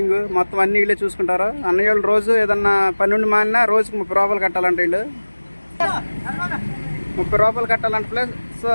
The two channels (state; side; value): inverted; both; correlation -1.00